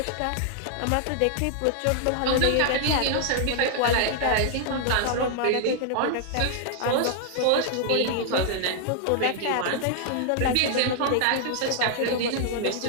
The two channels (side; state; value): both; different; correlation -0.01